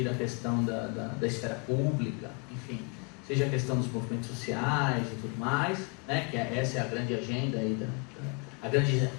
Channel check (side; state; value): right; quieter; 32.3 dB